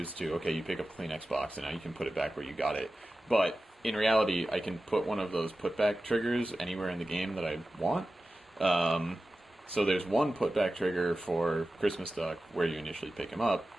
to, okay, you pick up a clean Xbox and now you can put it back where you got it. But in reality, I can put one of those putback triggers anywhere in the game that I want. So there's one putback trigger for Christmas Duck where you initially pick him up,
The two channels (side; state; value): both; normal; correlation 0.94